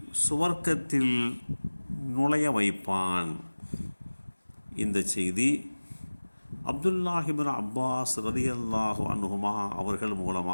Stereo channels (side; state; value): both; inverted; correlation -1.00